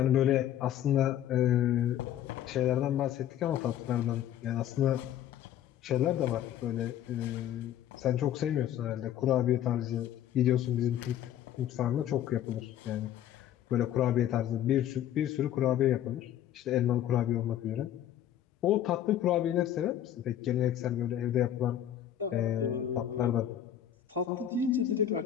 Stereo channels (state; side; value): quieter; right; 11.0 dB